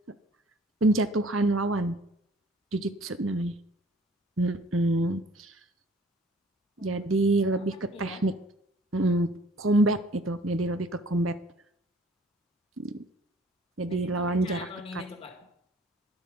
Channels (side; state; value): both; normal; correlation 0.54